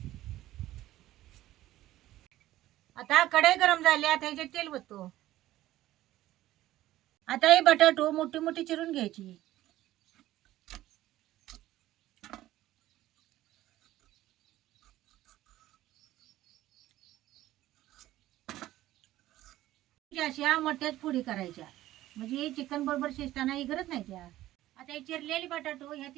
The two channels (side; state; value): left; quieter; 15.0 dB